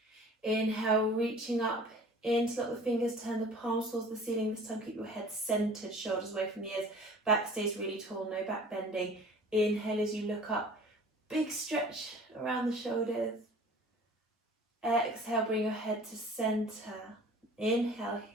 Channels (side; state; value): both; normal; correlation 0.46